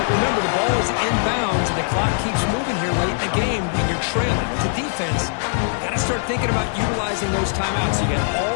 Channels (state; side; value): silent; right; digital silence